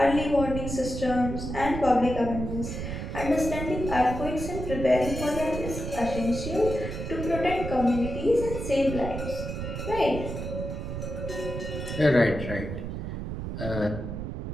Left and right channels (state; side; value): noise; right; rumble, 5 dB below the sound